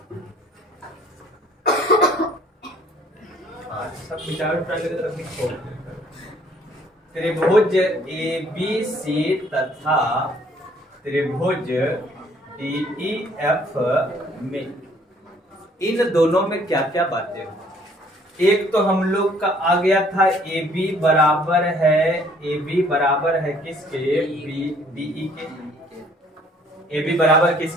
सब त्रिभुज ABC तथा त्रिभुज DEF में, इन दोनों में क्या क्या बातें हो। एक तो हम लोग का आ गया था AB बराबर है किसके, DE के, AB बराबर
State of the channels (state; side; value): normal; both; correlation 0.60